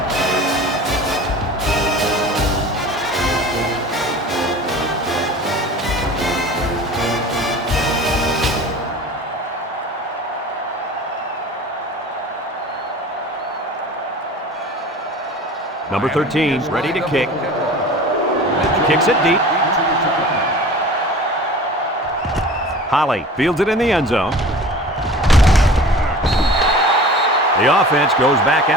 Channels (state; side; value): normal; both; correlation 0.40